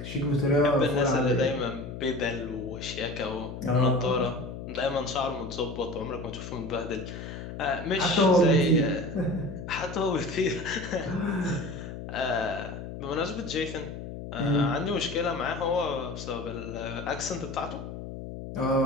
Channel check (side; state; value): left; noise; hum, 9 dB below the sound